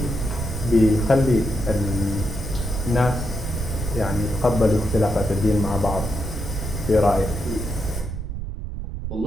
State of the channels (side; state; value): right; noise; rumble, 6 dB below the sound